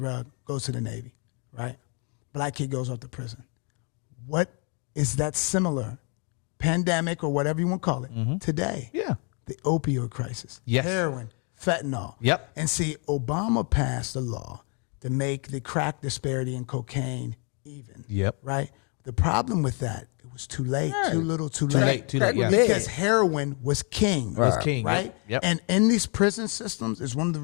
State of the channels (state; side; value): quieter; right; 36.9 dB